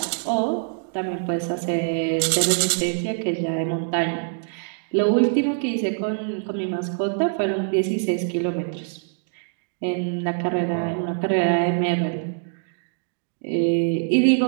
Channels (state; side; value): silent; left; 63 dB below the other